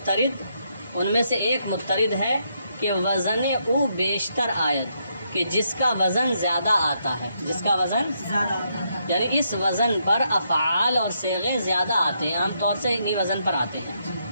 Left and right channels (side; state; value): both; inverted; correlation -0.77